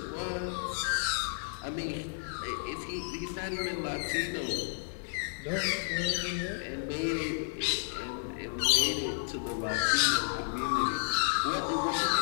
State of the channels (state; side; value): silent; right; 56 dB below the other